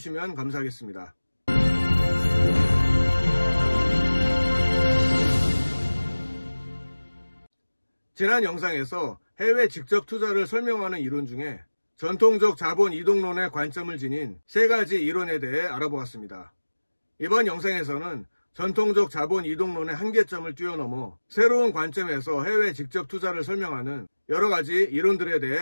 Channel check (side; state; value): both; inverted; correlation -1.00